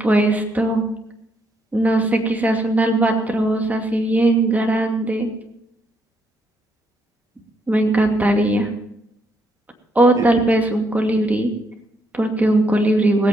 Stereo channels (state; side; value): normal; both; correlation 0.75